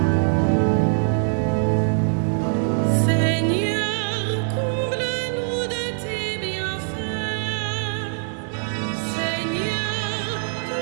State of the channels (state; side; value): silent; left; digital silence